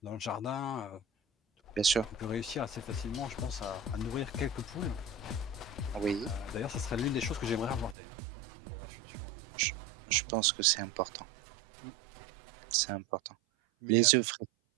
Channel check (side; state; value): left; drops out; at 8.0 s